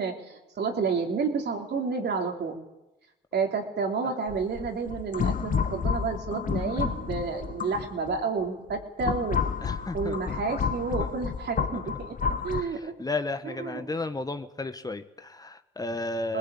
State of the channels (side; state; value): both; normal; correlation 0.28